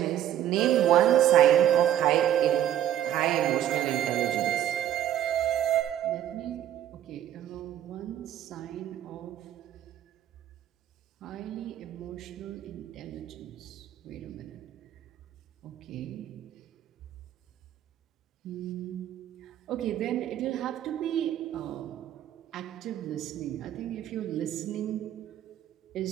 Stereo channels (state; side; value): quieter; left; 11.4 dB